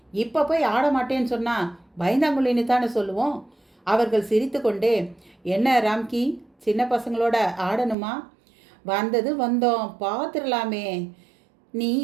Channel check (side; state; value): left; drops out; at 8.0 s